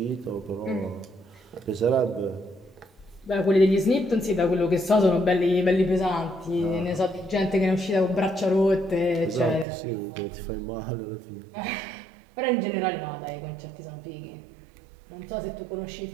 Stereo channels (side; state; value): left; drops out; at 9.7 s